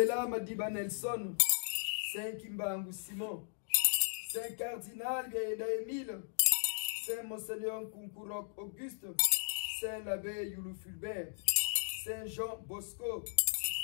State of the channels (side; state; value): right; silent; digital silence